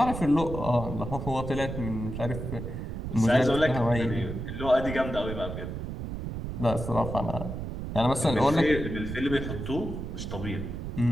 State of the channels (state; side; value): noise; right; rumble, 6 dB below the sound